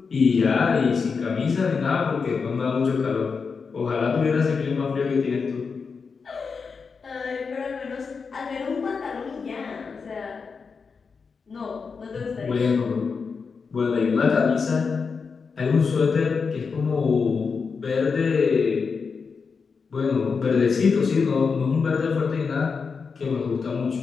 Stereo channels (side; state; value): right; quieter; 5.3 dB